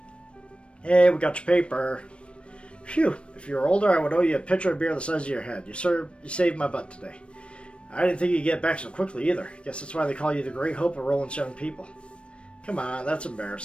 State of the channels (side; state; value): right; late; 0.059 ms